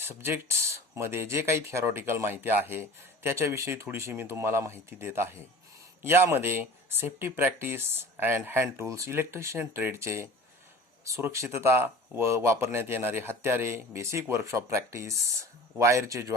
जे काही थिअरॉटिकल माहिती आहे त्याच्याविषयी थोडीशी मी तुम्हाला माहिती देत आहे. यामध्ये safety practice and hand tools, electrician ट्रेडचे सुरक्षितता व वापरण्यात येणारे हत्यारे, बेसिक वर्कशॉप प्रॅक्टिस, वायरचे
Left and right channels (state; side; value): normal; both; correlation 0.41